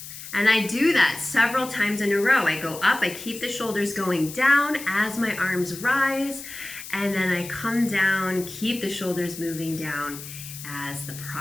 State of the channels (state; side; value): noise; left; hiss, 12 dB below the sound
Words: And I do that several times in a row. I go up, I keep the shoulders going down as my arms rise, and then I come down, keep the shoulders moving down as the